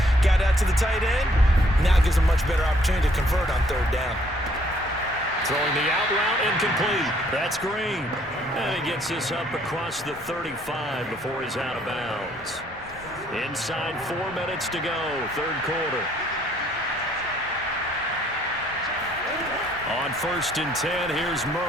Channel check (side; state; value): both; normal; correlation 0.64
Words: Got out to the tight end. Now it gives a much better opportunity to convert on third down. Throwing the out route, incomplete. That's Green. And he gets this up across the 35 before he's out of bounds. Inside 4 minutes to go, third quarter. On 1st and 10, here's